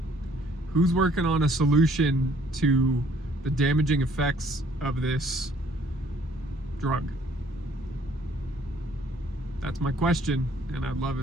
Who's working on a solution to the damaging effects of this drug? That's my question, and I'd love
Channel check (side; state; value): both; normal; correlation 0.61